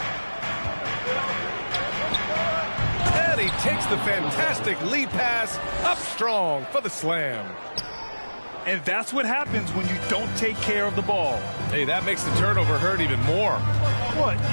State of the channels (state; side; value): inverted; both; correlation -1.00